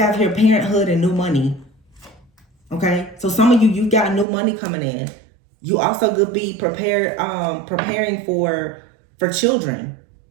here parenthood and new money. Okay, so some of you got new money coming in. You also could be preparing for children,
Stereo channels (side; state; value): left; drops out; at 4.2 s